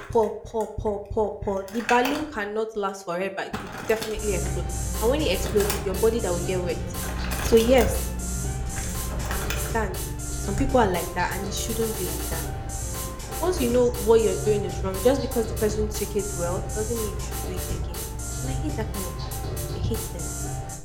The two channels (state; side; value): identical; both; correlation 1.00